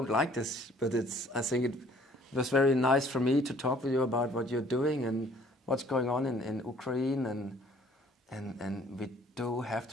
like this, but I think it was very nice for me to talk with you about what you're doing and what's going on in Ukraine, and we do have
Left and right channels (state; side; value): normal; both; correlation 0.57